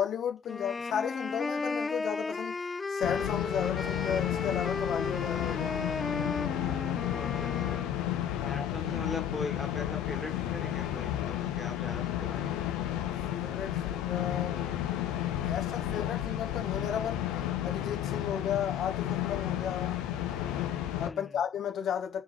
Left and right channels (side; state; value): right; quieter; 8.4 dB